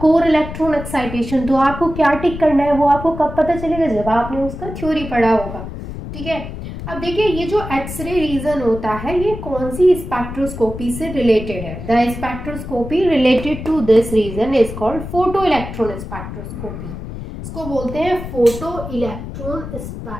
कोर इलेक्ट्रॉन एक्साइटेशन, तो आपको क्या टिक करना है वो आपको कब पता चलेगा, जब आपने उसका थ्योरी पढ़ा होगा। ठीक है, अब देखिए ये जो एक्सरे रीजन होता है ये कौन सी स्पेक्ट्रोस्कोपी से रिलेटेड है। The spectroscopy related to this region is called photo electron spectroscopy. इसको बोलते हैं photo electron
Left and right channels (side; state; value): left; noise; rumble, 9 dB below the sound